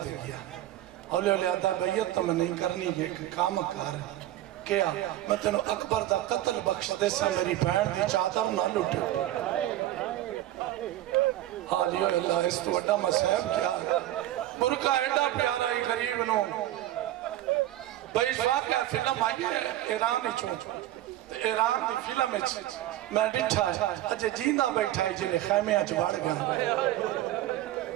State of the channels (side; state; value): left; quieter; 14.1 dB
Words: دے گیا اولیاء آدھا بیعت تو میں نہیں کرنی ہے کام کار کیا میں تینوں اکبر دا قتل بخش دے سے میری بہن دی چادر نہ لٹے. حالیو اللہ اس تو وڈا مسائب کیا برکہ ایڈا پیارا ہی غریب نو بھائی واقعہ فلم آئی ہے ایرانی چون ایران دی فلم میں ڈٹھا ہے اجھے جیندہ بیٹھا ہے جنہیں خیمے آج بڑھ گیا